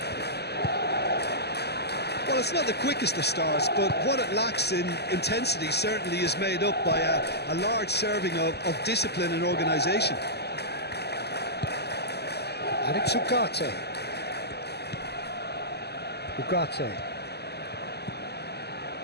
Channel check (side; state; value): right; late; 0.48 ms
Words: Well, it's not the quickest of starts, but what it lacks in intensity certainly is made up by a large serving of discipline and organisation. And it's Ugarte.